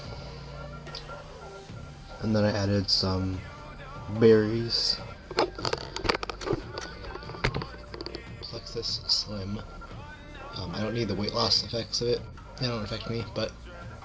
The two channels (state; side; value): identical; both; correlation 1.00